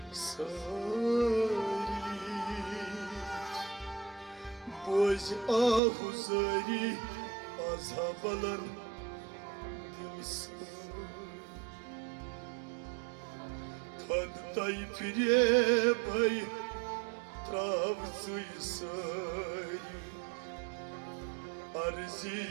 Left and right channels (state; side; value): drops out; left; at 5.8 s